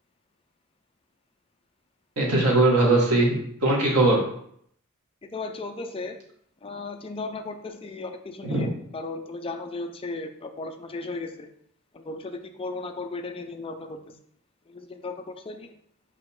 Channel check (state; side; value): normal; both; correlation 0.37